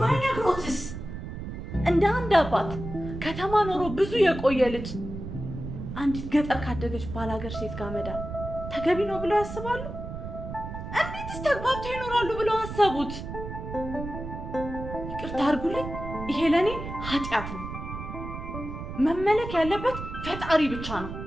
ባይነግሮትስ? እንደ አንድ አባት ከተማ ኖሮ ብዙ የቆየ ልጅ አንዲት ገጠር ካደገች ባላገር ሴት ጋር መዳር ተገቢ ነው ብለው ያስባሉ? እንዴትስ ተግባብተው ይኖራሉ ብለው አሰቡት? ይቅርታ አድርጉልኝ፣ ይሄ ለእኔ ኃጢአት ነው። መመለክ ያለበት ፈጣሪ ብቻ ነው።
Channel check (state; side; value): noise; right; rumble, 8 dB below the sound